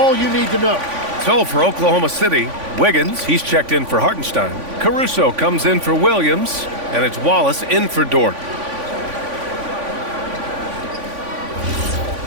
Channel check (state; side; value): late; left; 3.5 ms